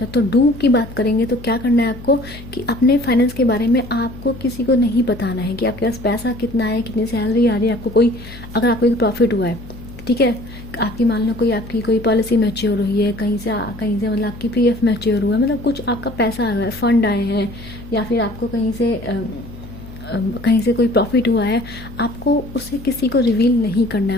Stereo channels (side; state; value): left; noise; hum, 16 dB below the sound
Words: तो डू की बात करेंगे तो क्या करना है आपको कि अपने फाइनेंस के बारे में आपको किसी को नहीं बताना है कि आपके पास पैसा कितना है, कितनी सैलरी आ रही है आपको। अगर आपको कोई प्रॉफिट हुआ है, ठीक है, आपकी मान लो आपकी कोई पॉलिसी मैच्योर हुई है कहीं से मतलब आपकी पीएफ मैच्योर हुआ है, मतलब कुछ आपका पैसा आया है, फंड आए हैं, या फिर आपको कहीं से कोई प्रॉफिट हुआ है, आपको उसे किसी को रिवील नहीं करना है।